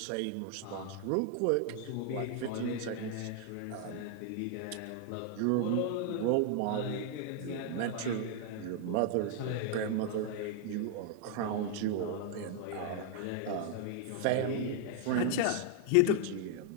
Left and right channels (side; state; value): both; different; correlation 0.00